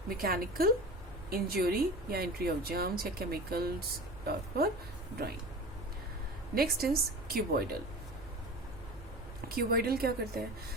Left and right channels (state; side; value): noise; right; rumble, 14 dB below the sound